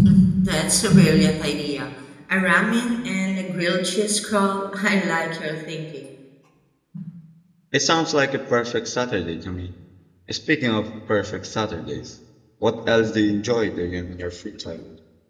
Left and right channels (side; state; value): both; identical; correlation 1.00